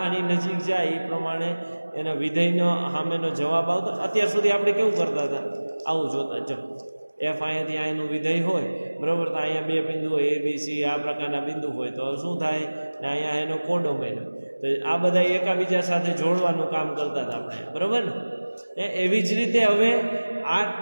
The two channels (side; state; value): both; inverted; correlation -1.00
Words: આની નજીક જાય એ પ્રમાણે એના વિધેયનો સામેનો જવાબ આવતો. અત્યાર સુધી આપણે કેવું કરતા હતા? આવું જોતા. જો એફ અહીંયાથી અહીંનું વિધેય હોય, બરાબર, તો અહીંયા બે બિંદુ હોય, એ બી સી આ પ્રકારના બિંદુ હોય તો શું થાય? ને અહીંયા એનો કોડોમેન. તો આ બધા એકાબીજા સાથે જોડવાનું કામ કરતા હતા આપણે, બરાબર ને? એવી જ રીતે હવે આ